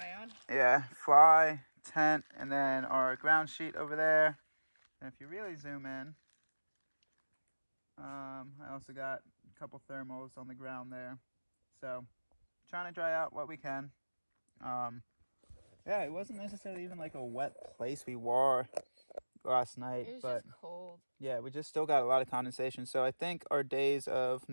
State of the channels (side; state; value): both; inverted; correlation -1.00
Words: on. Yeah, fly, tent, and then our ground sheet over there. And if you really zoom in, I also got a couple thermals on the ground there. So, trying to dry out what we can. Yeah, it wasn't necessarily even like a wet place we were last night. It was but just cold. Yeah, we just still got a lot of condensation. So I think our days of